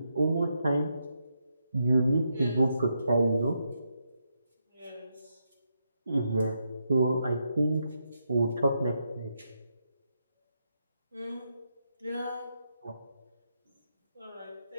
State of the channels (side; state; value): both; inverted; correlation -0.81